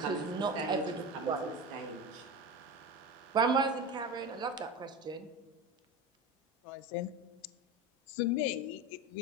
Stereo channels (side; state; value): both; normal; correlation 0.25